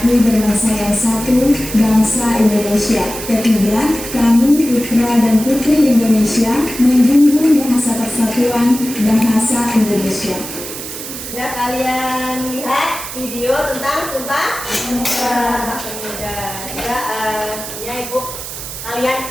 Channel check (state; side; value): noise; right; hiss, 9 dB below the sound